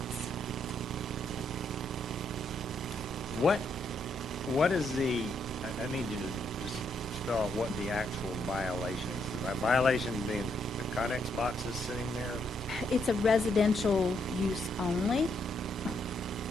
What is the, I need you to just spell out what the actual violation is. The violation being the Connex boxes sitting there? It's a residential use only.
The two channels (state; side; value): normal; both; correlation 0.76